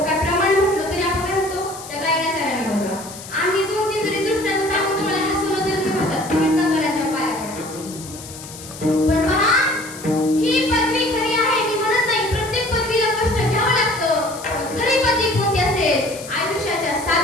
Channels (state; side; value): noise; left; hiss, 14 dB below the sound